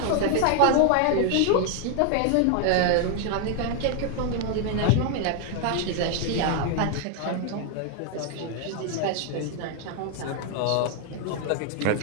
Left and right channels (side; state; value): both; different; correlation 0.00